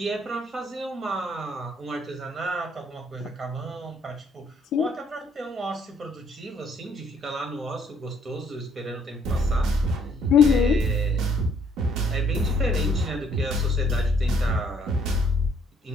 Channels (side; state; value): both; normal; correlation 0.65